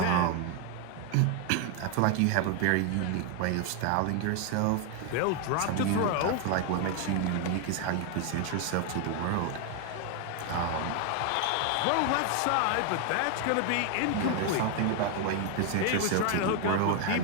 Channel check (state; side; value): different; both; correlation 0.01